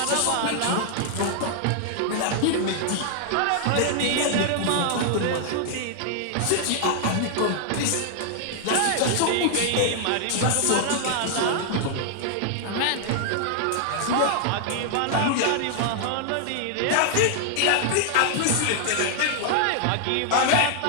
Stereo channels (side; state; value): both; different; correlation 0.00